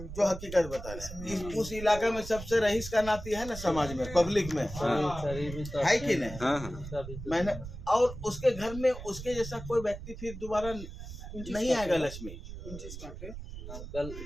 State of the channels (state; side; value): noise; right; rumble, 11 dB below the sound